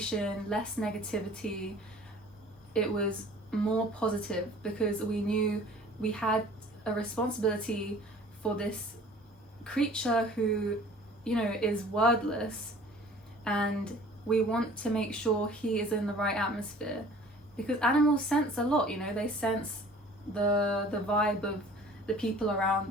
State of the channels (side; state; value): both; normal; correlation 0.48